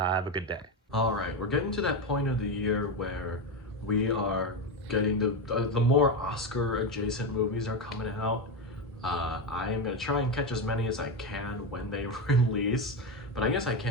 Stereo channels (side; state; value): both; normal; correlation 0.13